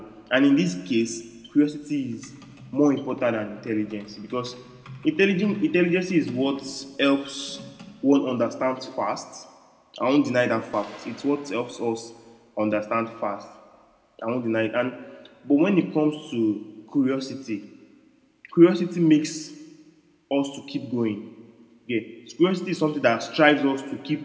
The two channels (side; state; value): both; identical; correlation 1.00